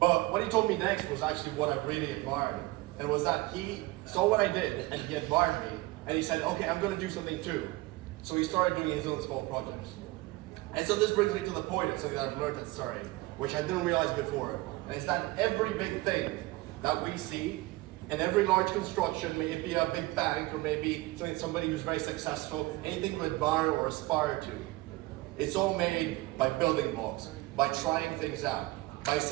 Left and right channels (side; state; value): left; quieter; 20.7 dB